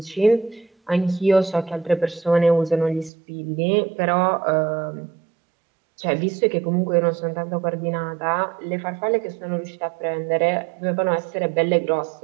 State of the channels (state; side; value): drops out; left; at 3.1 s